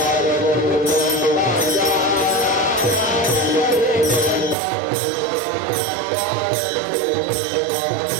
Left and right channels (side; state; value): left; drops out; at 4.5 s